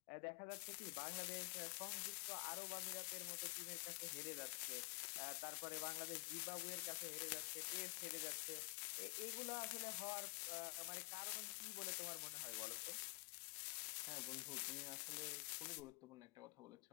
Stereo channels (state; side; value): quieter; right; 35.2 dB